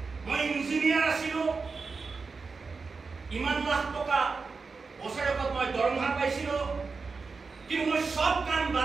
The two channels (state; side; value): quieter; left; 4.6 dB